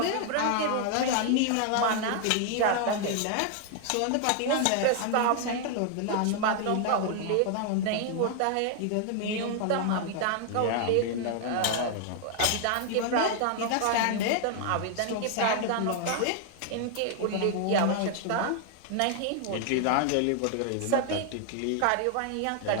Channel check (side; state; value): both; different; correlation 0.00